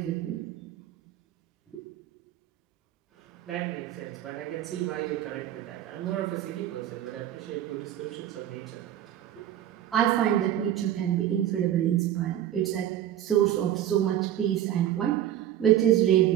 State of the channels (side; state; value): left; quieter; 11.5 dB